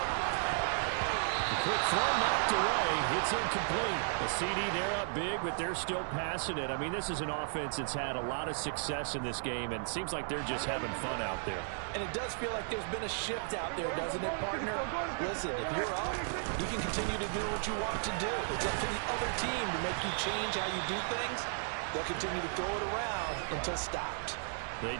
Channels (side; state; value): left; silent; 55 dB below the other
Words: Quick throw knocked away. It's incomplete. A CD, they're up big, but they're still passing it. I mean, this is an offense that's had a lot of success in this game, and it seems like they're just having fun out there. And it does feel like there's been a shift out there, doesn't it, partner? Listen, if you're up, you can continue to do what you want to do. It's up to the other team to make you change how you do things. They'll continue to throw it around until stopped. They